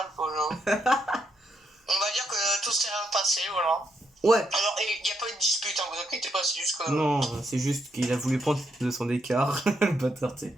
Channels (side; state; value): both; normal; correlation 0.78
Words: voilà. On va dire que tout s'est rien passé, voilà. Ouais. Alors, il n'y a pas eu de dispute, hein, vous inquiétez pas, c'est juste que... Non, c'est juste qu'il a voulu prendre de son écart, le bâtard, tu sais.